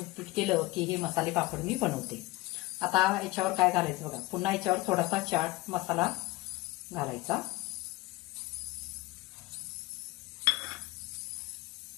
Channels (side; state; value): right; quieter; 20.1 dB